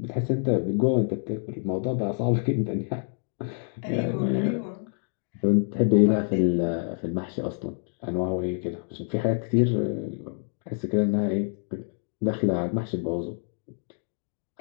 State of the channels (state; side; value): silent; right; 60 dB below the other